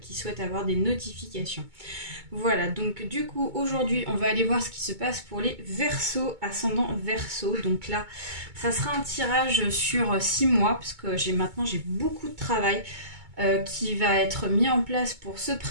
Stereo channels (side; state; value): left; late; 2.2 ms